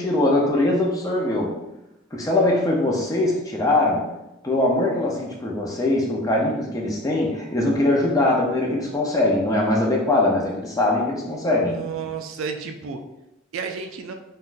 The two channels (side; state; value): both; normal; correlation 0.37